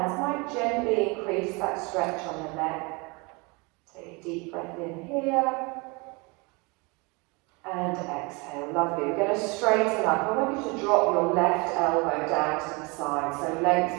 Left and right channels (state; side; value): quieter; left; 28.3 dB